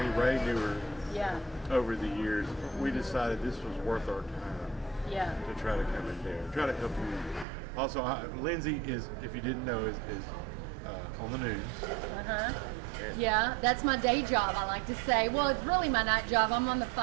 Ray knew her yeah, over the years, we decided this was worth our time yeah. to try to come in there, try to help you. Also, Lindsay is, if you didn't know, is on the news. Yeah, that's my day job, I like to say. Well, it's really my night job. I'm on the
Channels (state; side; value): drops out; left; at 7.5 s